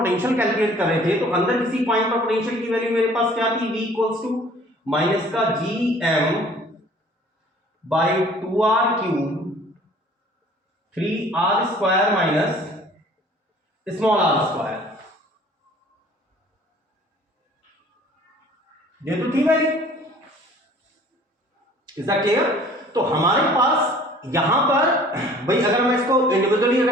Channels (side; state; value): both; normal; correlation 0.52